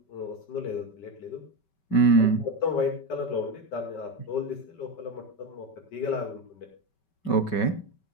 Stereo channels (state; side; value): late; right; 5.2 ms